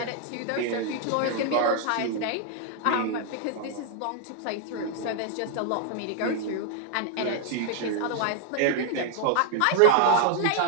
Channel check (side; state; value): both; different; correlation 0.00